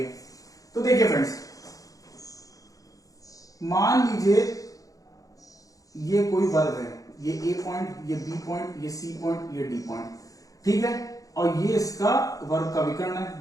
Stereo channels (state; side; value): late; right; 0.17 ms